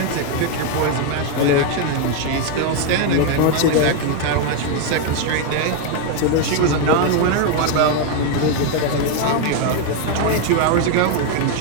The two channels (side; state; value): both; different; correlation 0.01